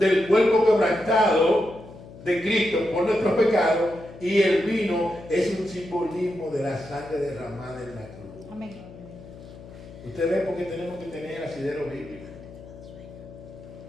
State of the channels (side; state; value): left; noise; hum, 17 dB below the sound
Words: cuerpo quebrantado de Cristo por nuestros pecados y el vino es un simbolismo de la sangre derramada en la cruz. Amén. Usted ve por qué tenemos que tener asidero bíblico.